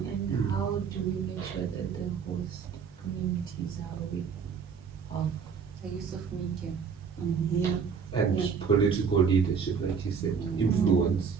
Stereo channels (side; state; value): left; quieter; 6.4 dB